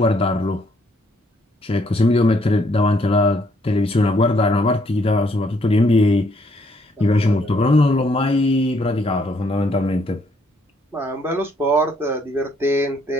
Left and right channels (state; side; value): normal; both; correlation 0.69